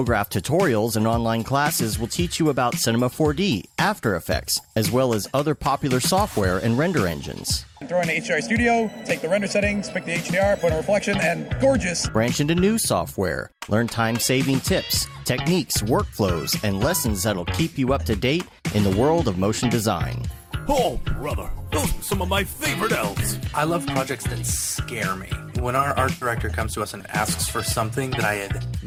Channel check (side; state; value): both; identical; correlation 1.00